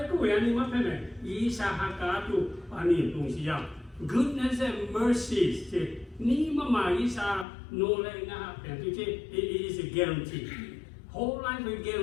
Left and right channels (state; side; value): drops out; right; at 7.5 s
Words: tu ani apa me? Isa haka tu ani lungsiau. Goodness and mercy. Ni mama isa no le ngah pen tu it is a guarantee. Whole life a